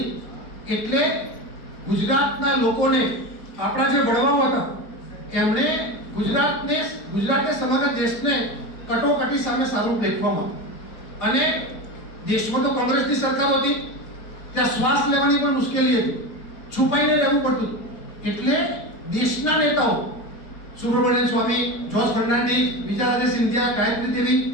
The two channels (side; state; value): right; late; 4.4 ms